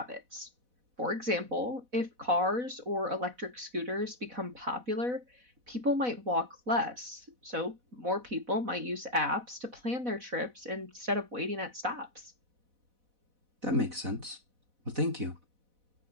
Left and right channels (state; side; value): late; left; 4.1 ms